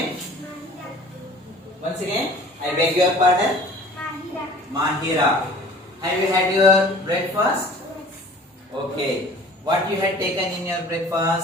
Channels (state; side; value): normal; both; correlation 0.48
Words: Once again, I beg your pardon. Mahira. Have you had your breakfast? Okay. What you had taken in your